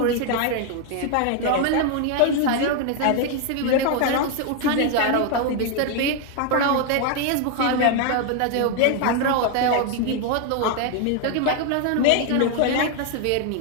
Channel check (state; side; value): different; both; correlation 0.01